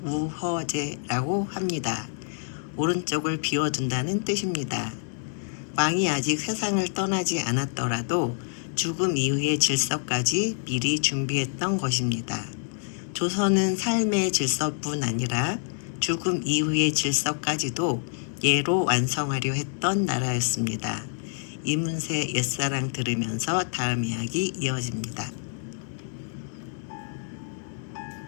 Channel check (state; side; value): silent; right; digital silence